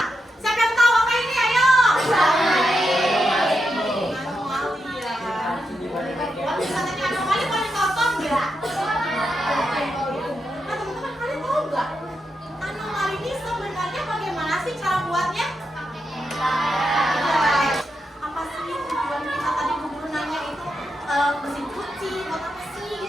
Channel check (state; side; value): normal; both; correlation 0.85